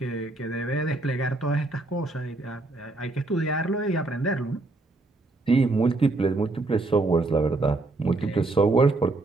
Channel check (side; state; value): left; quieter; 3.1 dB